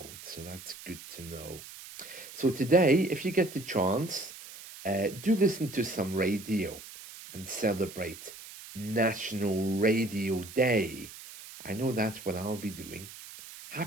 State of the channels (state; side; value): noise; right; hiss, 15 dB below the sound